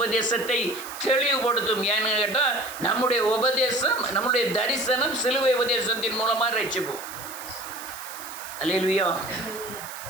தெளிவுபடுத்தும். ஏன்னு கேட்டால் நம்முடைய உபதேசம், நம்முடைய தரிசனம் சிலுவை உபதேசத்தின் மூலமாக ரட்சிப்போம். அல்லேலூயா.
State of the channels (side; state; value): right; noise; hiss, 13 dB below the sound